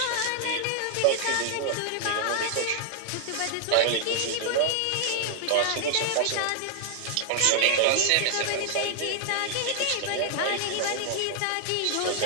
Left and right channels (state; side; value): different; both; correlation 0.00